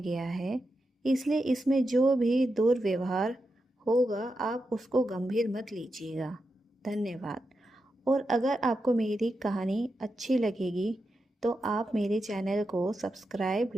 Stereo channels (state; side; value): normal; both; correlation 0.88